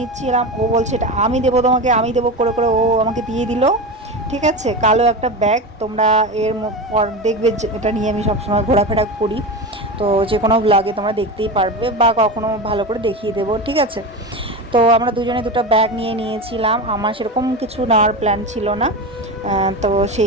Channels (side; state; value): both; normal; correlation 0.23